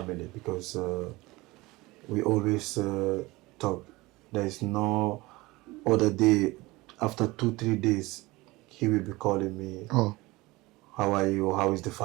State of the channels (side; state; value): left; quieter; 21.2 dB